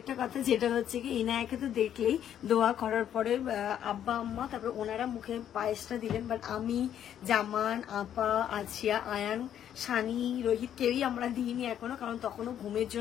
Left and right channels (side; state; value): right; quieter; 10.1 dB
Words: কথা যেটা হচ্ছে কি ইনায়াকে তো দেখলেই দোয়া করার পরে আব্বা আম্মা তারপর ওনারা মুখে পায়েসটা দিলেন, বাট আমি, জামান, আপা, আছিয়া, আয়ান, সানি, রোহিত কেউই আমরা দিইনি এখনো, কারণ তখনও ঘুমের